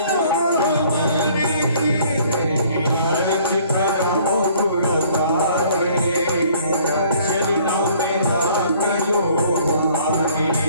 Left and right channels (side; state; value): both; inverted; correlation -0.57